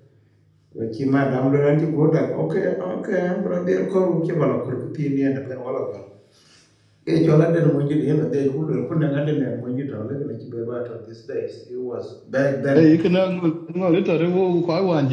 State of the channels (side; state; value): both; identical; correlation 1.00